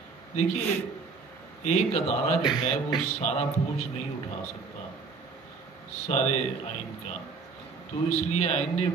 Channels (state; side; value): quieter; left; 4.7 dB